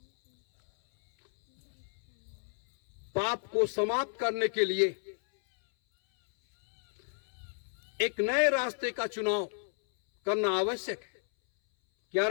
पाप को समाप्त करने के लिए एक नए रास्ते का चुनाव करना आवश्यक है। क्या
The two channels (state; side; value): silent; right; 57 dB below the other